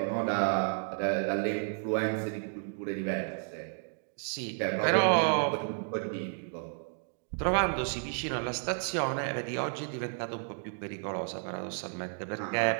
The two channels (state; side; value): silent; left; 56 dB below the other